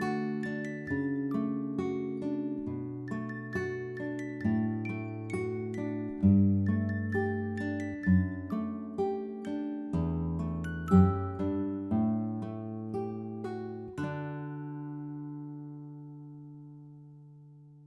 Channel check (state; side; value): identical; both; correlation 1.00